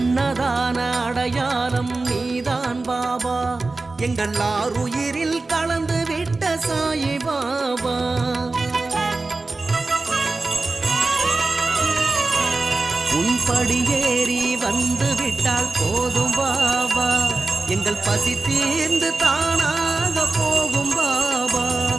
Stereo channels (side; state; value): left; quieter; 3.5 dB